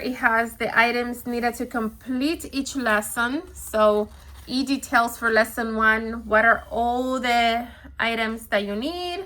has the items needed to complete each lesson. So it details for lesson 1 what are all the items that you need,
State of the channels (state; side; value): identical; both; correlation 1.00